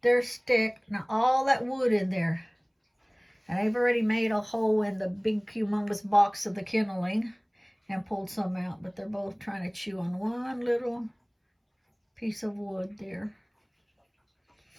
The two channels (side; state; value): both; identical; correlation 1.00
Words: stick. Now all that wood in there. And I've already made a hole in the big humongous box of the kenneling and pulled some out. But they're both trying to chew on one little piece of wood there.